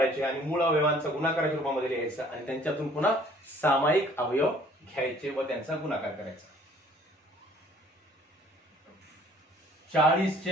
आणि मूळ अवयवांचा गुणाकाराच्या रूपामध्ये लिहायचं आणि त्यांच्यातून पुन्हा सामायिक अवयव घ्यायचे व त्यांचा गुणाकार करायचा. 40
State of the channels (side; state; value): both; normal; correlation 0.56